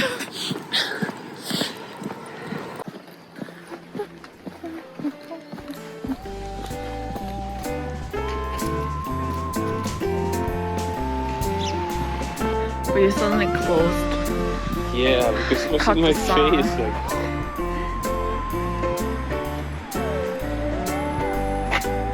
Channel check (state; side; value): identical; both; correlation 1.00